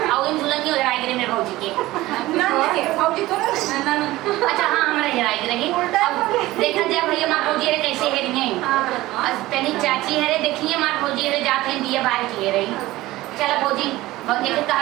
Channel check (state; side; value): quieter; left; 17.6 dB